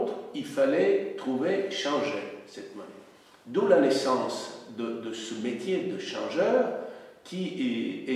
il fallait changer cette monnaie. D'où la naissance de ce métier de changeur qui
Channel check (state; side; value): identical; both; correlation 1.00